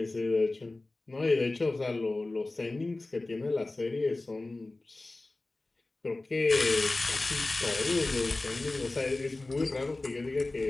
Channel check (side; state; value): right; quieter; 3.0 dB